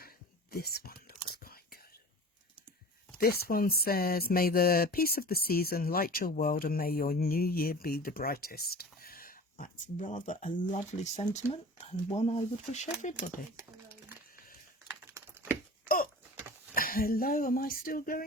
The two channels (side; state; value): both; normal; correlation 0.38